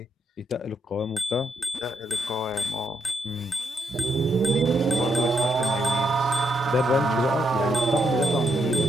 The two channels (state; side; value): normal; both; correlation 0.78